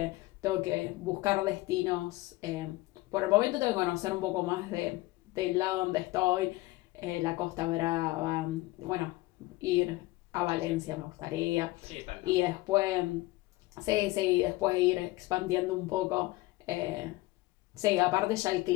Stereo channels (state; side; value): quieter; right; 19.9 dB